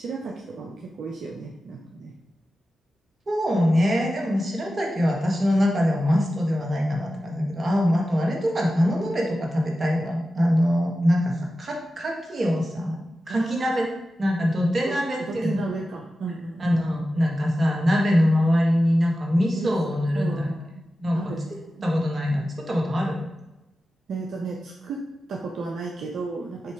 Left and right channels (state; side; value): normal; both; correlation 0.93